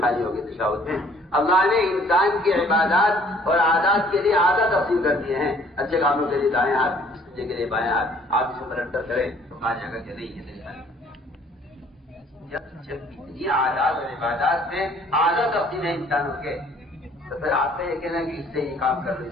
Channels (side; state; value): both; normal; correlation 0.58